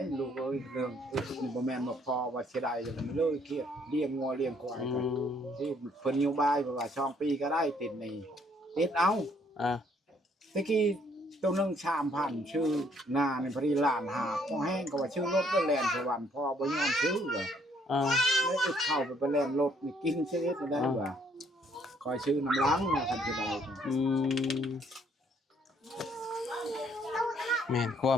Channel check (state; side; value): normal; both; correlation 0.66